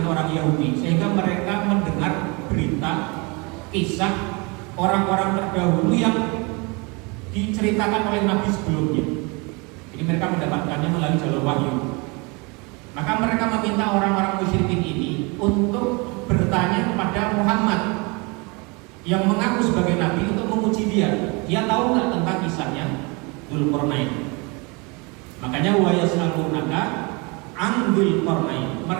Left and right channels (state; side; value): quieter; left; 29.0 dB